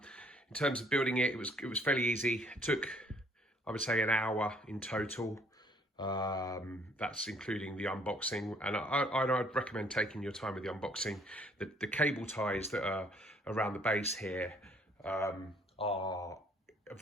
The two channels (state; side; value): normal; both; correlation 0.62